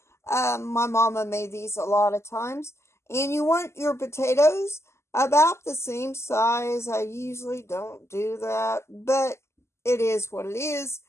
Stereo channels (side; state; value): right; late; 0.13 ms